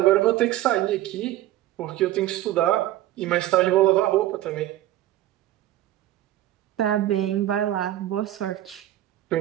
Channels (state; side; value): quieter; left; 14.1 dB